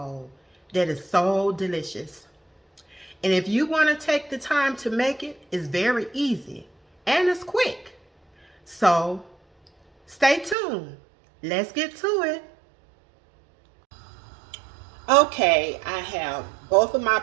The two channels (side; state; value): left; drops out; at 10.6 s